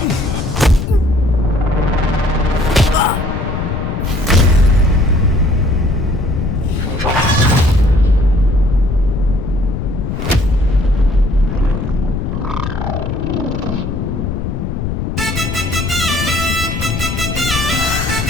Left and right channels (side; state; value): left; noise; rumble, 3 dB below the sound